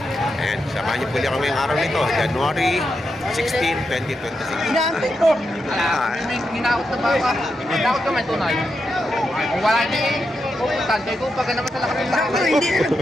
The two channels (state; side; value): normal; both; correlation 0.86